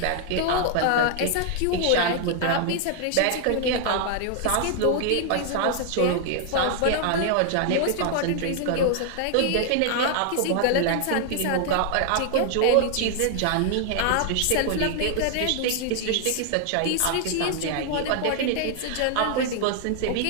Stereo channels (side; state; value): both; different; correlation 0.00